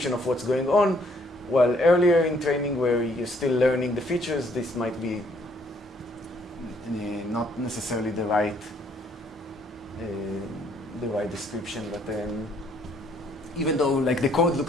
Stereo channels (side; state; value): both; normal; correlation 0.66